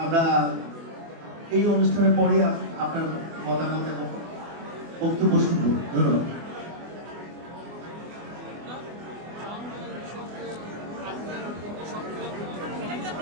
আমরা এই অনুষ্ঠানের পরে আপনার মতামত এবং বক্তব্য শুনব। ধন্যবাদ।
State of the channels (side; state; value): left; late; 24 ms